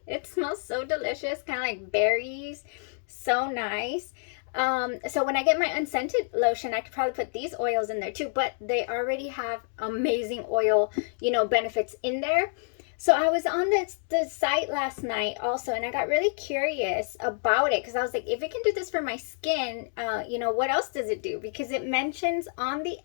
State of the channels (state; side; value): silent; right; 59 dB below the other